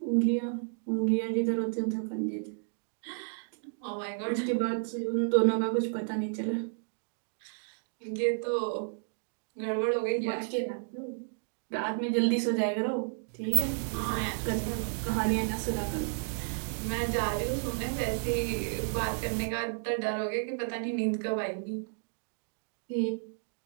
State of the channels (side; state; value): left; silent; digital silence